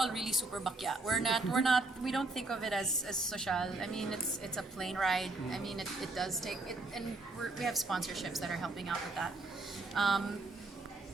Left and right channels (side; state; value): left; quieter; 3.1 dB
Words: really super bakya. We don't think of it as social. I mean, it's a plane ride. I mean, it does take it, and we have sponsorships that are helping out with that.